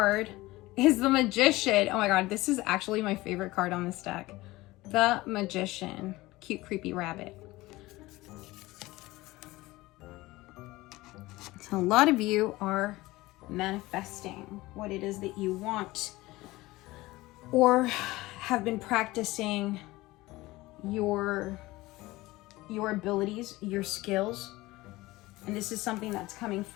is the Magician. Oh my God, this is actually my favorite card on this deck. The Magician. Cute, creepy rabbit. So a lot of you are manifesting what it is that you want, or have been practicing your abilities, your skills. And this is something that's coming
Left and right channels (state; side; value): quieter; right; 19.4 dB